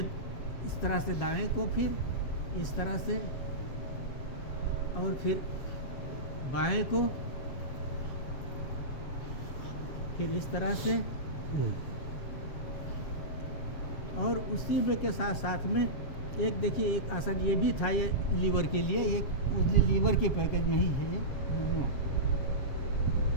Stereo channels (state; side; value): late; right; 7.4 ms